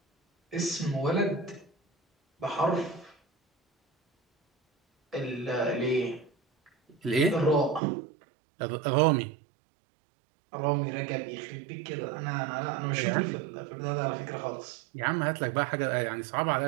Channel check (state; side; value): drops out; left; at 7.8 s